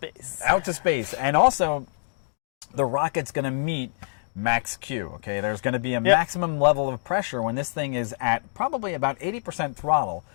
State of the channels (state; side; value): silent; right; digital silence